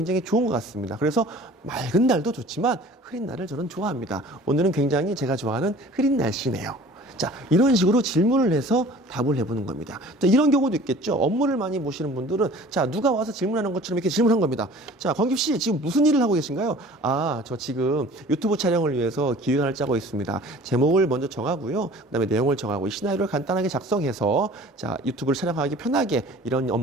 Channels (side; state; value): both; normal; correlation 0.47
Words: 좋은 것 같습니다. 그래서 맑은 날도 좋지만 흐린 날을 저는 좋아합니다. 오늘은 굉장히 제가 좋아하는 흐린 날씨네요. 자, 이런 식으로 질문을 해서 답을 해보는 겁니다. 자, 이런 경우도 있겠죠. 업무를 많이 보시는 분들은 자, 누가 와서 질문하는 것처럼 이렇게 질문한 겁니다. 자, 권규 씨 지금 무슨 일을 하고 계신가요? 아, 저 지금 유튜브 촬영을 위해서 기획안을 짜고 있습니다. 제목을 먼저 정하고요. 그다음에 내용을 정하고 이 시나리오를 간단하게 작성해서 자, 유튜브를 촬영하기 편하게 이런